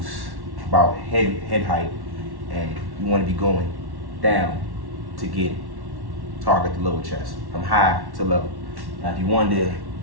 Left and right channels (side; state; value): left; late; 1.1 ms